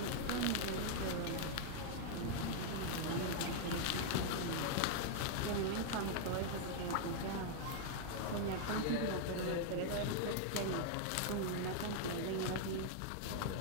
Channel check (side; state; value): both; different; correlation 0.00